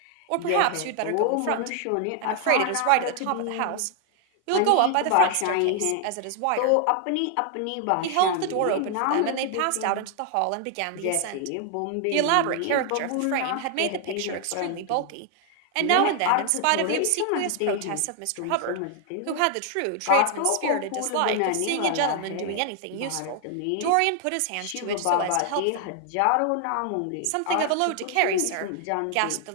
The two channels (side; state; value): both; different; correlation 0.00